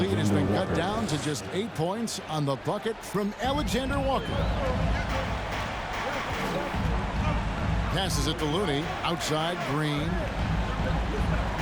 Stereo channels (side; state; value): both; identical; correlation 1.00